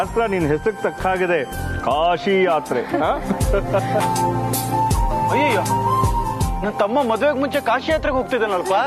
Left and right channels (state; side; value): identical; both; correlation 1.00